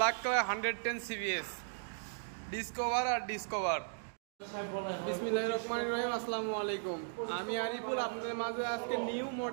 colour 110 CBS, Discover আর Discover. বিসমিল্লাহির রহমানির রহিম। আসসালামু আলাইকুম, আমি আরিফুল। আপনাদের মাঝে আজকে নিউ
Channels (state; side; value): silent; left; digital silence